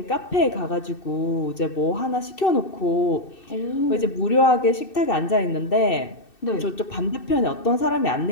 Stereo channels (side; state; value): right; late; 2.6 ms